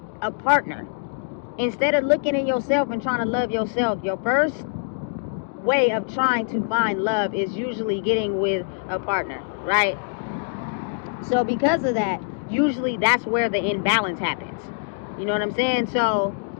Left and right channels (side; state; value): right; silent; digital silence